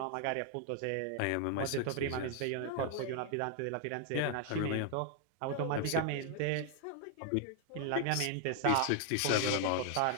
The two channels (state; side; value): different; both; correlation 0.00